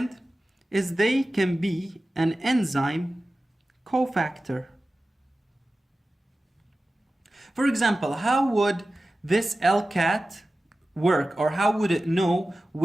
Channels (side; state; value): both; normal; correlation 0.95